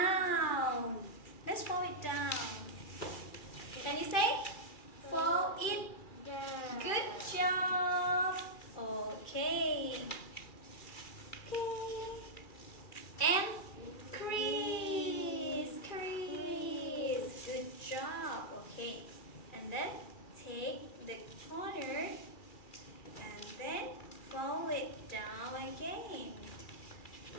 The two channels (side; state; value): right; late; 2.3 ms